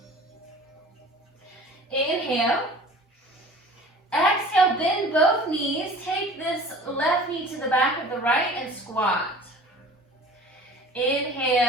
Inhale. Exhale, bend both knees. Take this left knee to the back of the right and squat.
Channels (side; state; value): both; normal; correlation 0.44